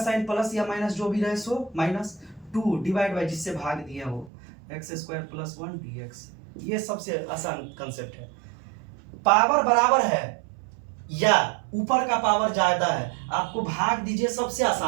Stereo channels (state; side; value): drops out; left; at 4.3 s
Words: प्लस या माइनस जो भी रहे सो माइनस 2 डिवाइड बाय जिससे भाग दिया वो एक्स स्क्वायर प्लस 1 dx। ये सबसे आसान कंसेप्ट है। पावर बराबर है या ऊपर का पावर ज्यादा है, आपको भाग दीजिए। सबसे